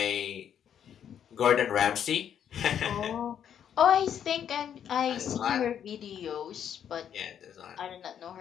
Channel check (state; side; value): quieter; right; 9.0 dB